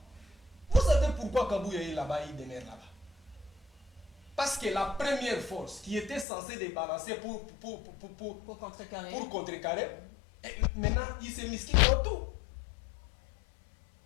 Vous savez pourquoi Kabouya est là-bas, il demeure là-bas? Parce que la première force qui était censée débalancer pour contrecarrer, maintenant, il s'est misqué dans tout.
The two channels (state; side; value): drops out; right; at 6.2 s